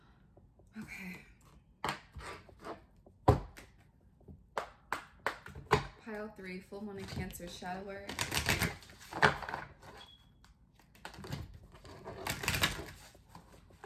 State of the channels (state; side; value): identical; both; correlation 1.00